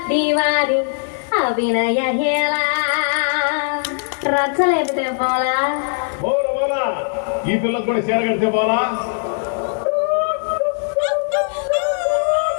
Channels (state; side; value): silent; right; digital silence